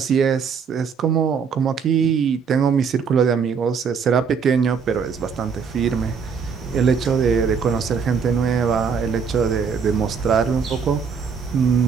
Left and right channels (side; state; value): left; quieter; 6.2 dB